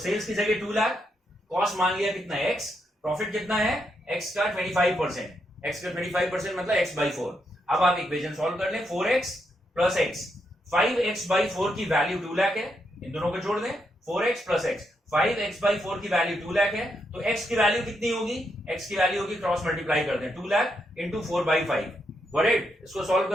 की जगह 2 लाख, कॉस्ट मान लिया कितना है? एक्स, प्रॉफिट कितना है? एक्स का 25%, एक्स का 25% मतलब एक्स बाई 4। अब आप इक्वेशन सॉल्व कर लें, 4x plus x. 5x by 4 की वैल्यू 2 लाख है, इन दोनों को जोड़ दें, 4x plus x. 5x by 4 की वैल्यू 2 लाख है, तो x की वैल्यू कितनी होगी? x की वैल्यू होगी, क्रॉस मल्टीप्लाई कर दें, 2 लाख इंटू 4/5। वॉट? इसको सॉल्व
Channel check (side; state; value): both; normal; correlation 0.80